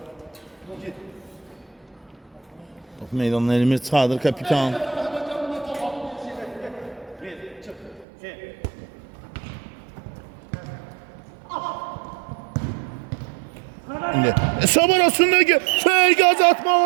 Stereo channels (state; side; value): drops out; left; at 8.1 s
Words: Top meydanına Elmir Çadır kapitan. Hesab arasındaki gaz